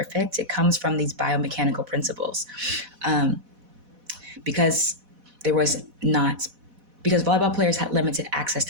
it comes from these biomechanical principles. Um, because there was not because volleyball players had limited access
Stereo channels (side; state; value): left; late; 4.1 ms